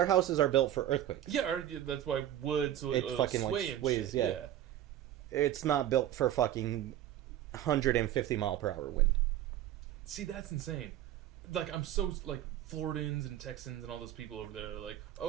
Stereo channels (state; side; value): quieter; left; 12.2 dB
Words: houses are built for earthquakes. Yeah, that's why wood, so It fucking, sway like, and sways, shit. yeah. It's not built for fucking 150 mile per hour wind. See, that's insane. Like, I'm so, like, Floridans and Texans and all those people over there are like,